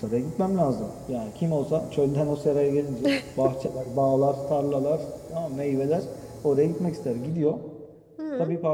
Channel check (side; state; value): both; identical; correlation 1.00